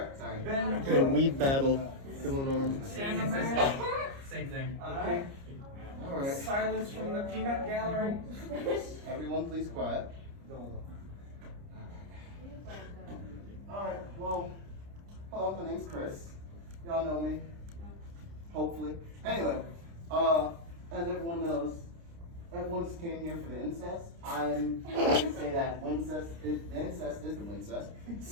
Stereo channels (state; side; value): late; left; 29 ms